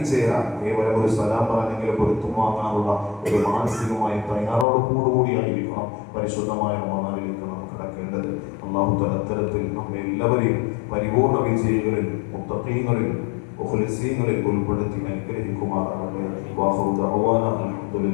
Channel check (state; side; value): drops out; right; at 4.7 s